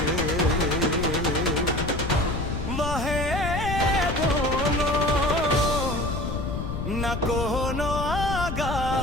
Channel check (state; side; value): noise; left; rumble, 4 dB below the sound